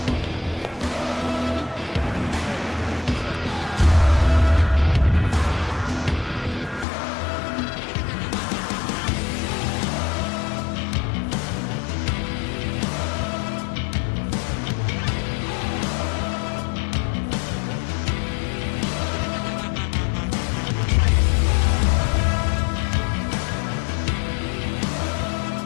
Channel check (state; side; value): drops out; right; at 6.9 s